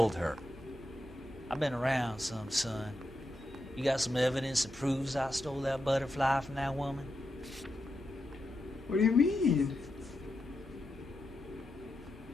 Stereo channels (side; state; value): both; normal; correlation 0.87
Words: her. I've been around some, son. You got some evidence that proves I stole that butterfly from that woman? What do you mean?